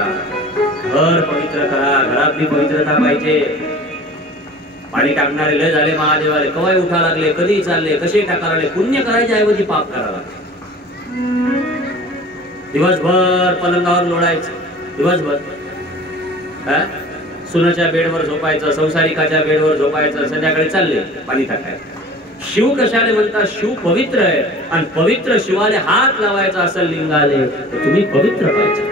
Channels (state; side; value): normal; both; correlation 0.43